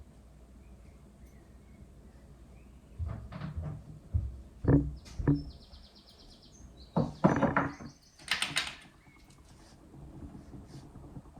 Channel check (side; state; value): both; identical; correlation 1.00